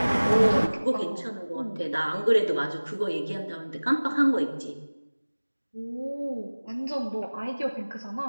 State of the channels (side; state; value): both; inverted; correlation -1.00